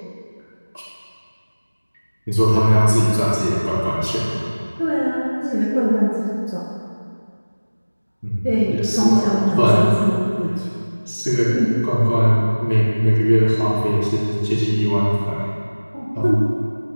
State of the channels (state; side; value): inverted; both; correlation -1.00